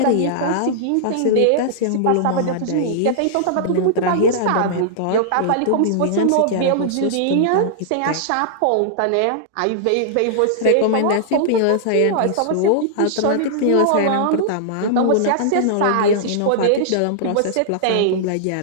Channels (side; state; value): both; different; correlation -0.01